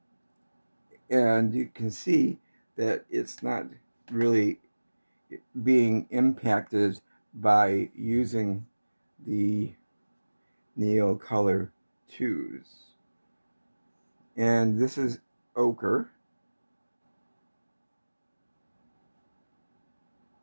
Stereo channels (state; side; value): inverted; both; correlation -1.00